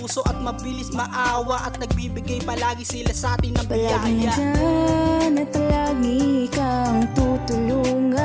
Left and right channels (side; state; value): both; identical; correlation 1.00